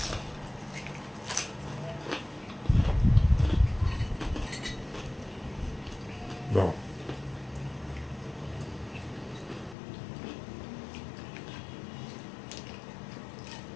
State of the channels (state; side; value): drops out; right; at 9.8 s